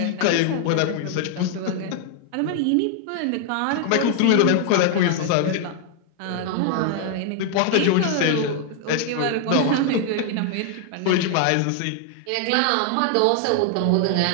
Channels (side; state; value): both; different; correlation 0.00